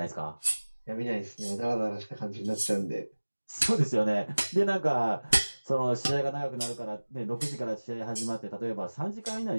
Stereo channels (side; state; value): both; inverted; correlation -1.00